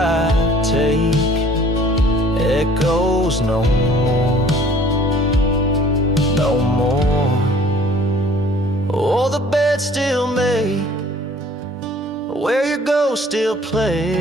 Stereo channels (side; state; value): both; normal; correlation 0.53